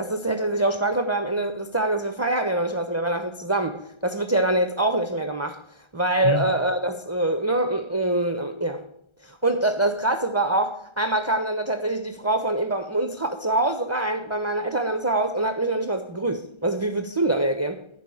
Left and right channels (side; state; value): right; late; 1.3 ms